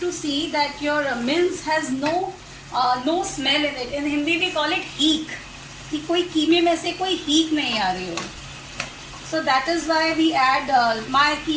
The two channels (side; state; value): both; identical; correlation 1.00